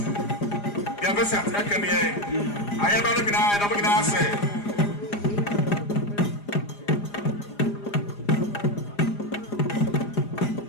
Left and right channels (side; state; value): right; late; 4.9 ms